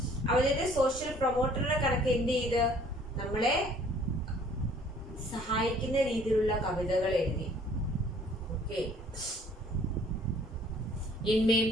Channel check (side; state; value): both; normal; correlation 0.57